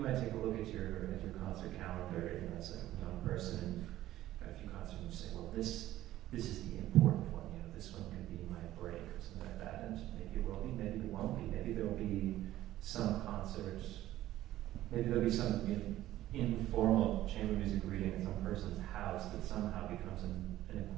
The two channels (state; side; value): quieter; left; 14.3 dB